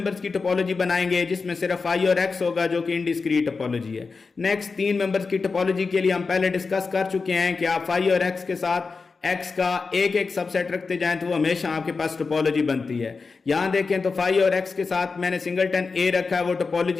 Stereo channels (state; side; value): quieter; right; 4.5 dB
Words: की टोपोलॉजी बनाएंगे जिसमें सिर्फ फाई और एक्स होगा जो कि इनडिस्क्रीट टोपोलॉजी है। नेक्स्ट तीन मेंबर्स की टोपोलॉजी के लिए हम पहले डिस्कस कर चुके हैं कि आप फाई और एक्स के साथ एक्स का एक एक सबसेट रखते जाएं तो वो हमेशा आपके पास टोपोलॉजी बनती है। यहां देखें तो फाई और एक्स के साथ मैंने सिंगलटन ए रखा है, वो